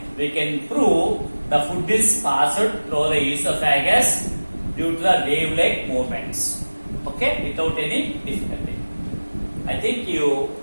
we can prove the food is passed through the esophagus due to the wave-like movements. Okay, without any difficulty. I think you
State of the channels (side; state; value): both; inverted; correlation -1.00